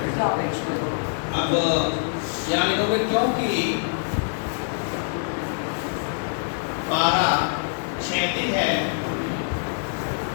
अब यहाँ लिखोगे क्योंकि पारा क्षैतिज है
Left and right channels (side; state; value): right; silent; digital silence